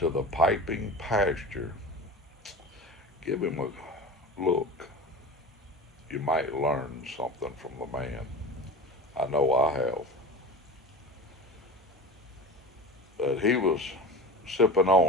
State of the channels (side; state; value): both; normal; correlation 0.31